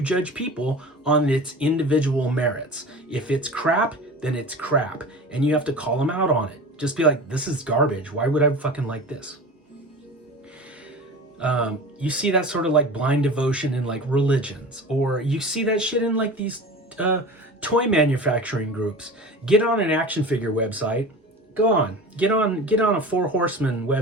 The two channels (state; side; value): normal; both; correlation 0.35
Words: judge people on its individual merits. If it's crap, then it's crap. And you have to call them out on it. Just be like, this is garbage. Why would I fucking like this? You see that sort of like blind devotion in like religions, or you see that shit in like these toy manufacturing groups. Get on an action figure website. Go on, get on a Four Horsemen